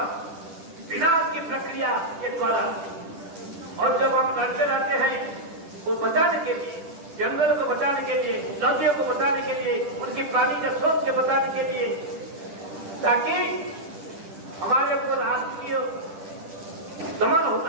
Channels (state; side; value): late; left; 10 ms